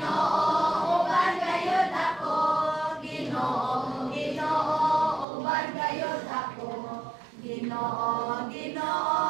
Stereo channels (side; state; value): left; drops out; at 5.2 s